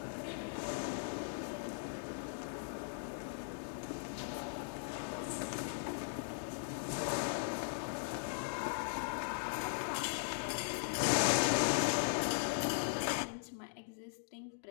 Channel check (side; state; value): right; silent; digital silence